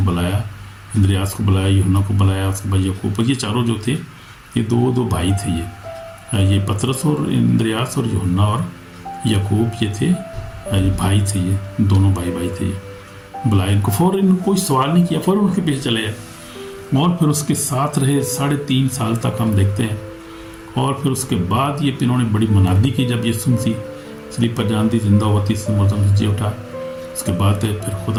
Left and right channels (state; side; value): identical; both; correlation 1.00